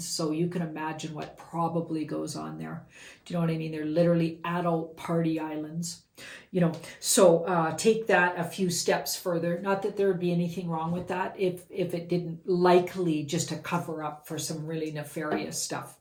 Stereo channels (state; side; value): identical; both; correlation 1.00